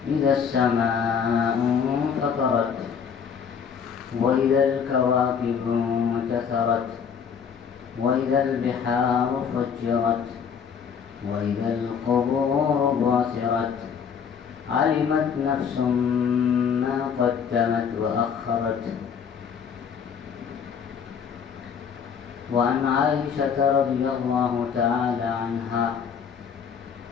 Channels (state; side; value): quieter; right; 7.0 dB